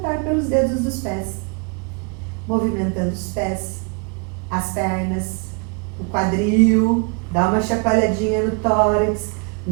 pelos dedos dos pés. Movimentando os pés, as pernas, o quadril, dá uma chacoalhadinha no tórax,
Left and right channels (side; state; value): left; quieter; 33.0 dB